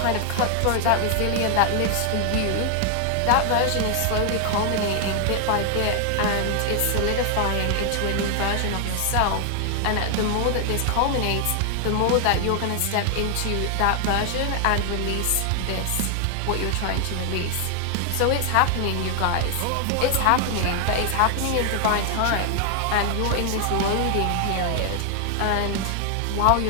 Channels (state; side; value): different; both; correlation 0.00